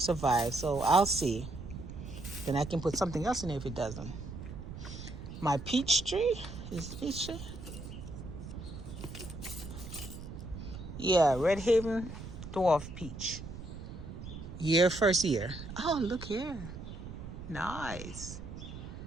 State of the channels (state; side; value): noise; right; rumble, 10 dB below the sound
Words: So I'll see. Then I can put something else in there if it doesn't. My peach tree. Is it peach tree? Yeah, Red Haven Dwarf Peach. First year. Oh, look here. Nice.